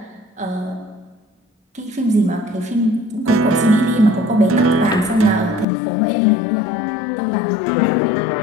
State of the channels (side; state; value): right; drops out; at 5.7 s